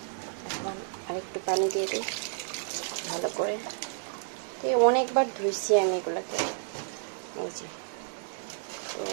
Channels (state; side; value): silent; left; digital silence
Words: এখন আরেকটু পানি দিয়ে দিই ভালো করে। অনেকবার ধুইছি আমি এগুলাকে। এই যে, তো